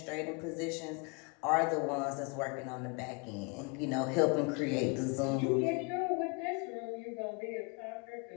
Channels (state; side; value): quieter; right; 31.9 dB